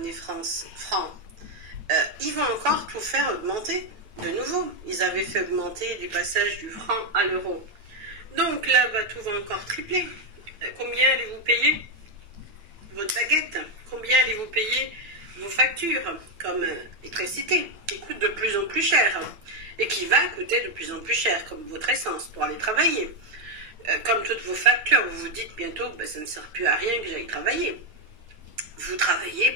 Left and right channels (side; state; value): left; late; 8.8 ms